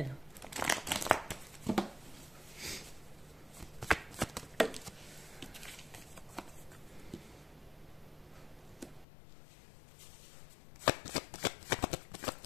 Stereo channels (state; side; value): drops out; right; at 9.1 s